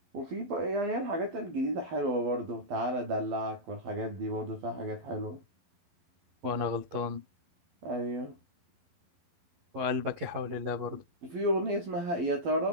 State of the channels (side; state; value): left; late; 11 ms